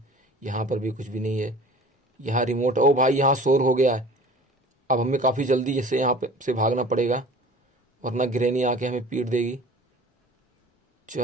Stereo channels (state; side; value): normal; both; correlation 0.44